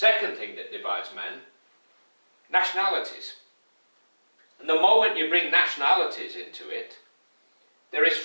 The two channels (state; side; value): inverted; both; correlation -1.00